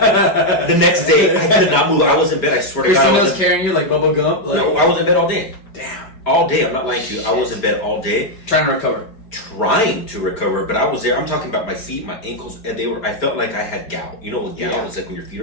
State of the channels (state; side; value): late; right; 4.9 ms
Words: next day, I could not move. I was in bed. I swear to God, I was carrying you like Bubba Gump. Like, no, I was in bed all day. Damn, all day. I'm not lying to you. I was in bed all day, trying to recover. But I was there. I'm talking about my feet, my ankles, and they were. I felt like I had gout. You know what gout is like when your feet